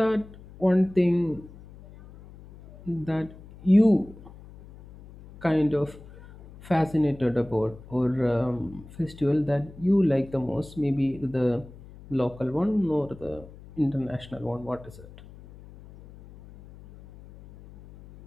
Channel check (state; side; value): noise; left; hum, 19 dB below the sound